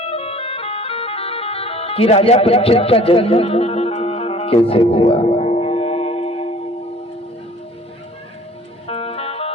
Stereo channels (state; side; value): normal; both; correlation 0.51